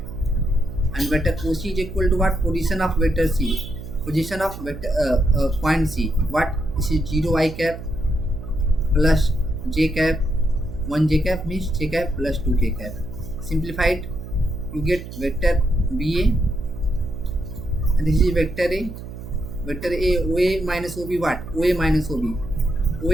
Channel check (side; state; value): right; noise; hum, 11 dB below the sound